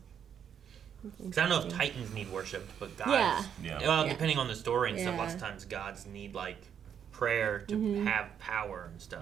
Because I don't know if Titans need worshipped, but gods. Yeah. Yeah. Well, Yeah. depending on the story and stuff, Yeah. lots of times gods need like prayer to have power and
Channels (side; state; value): left; quieter; 8.4 dB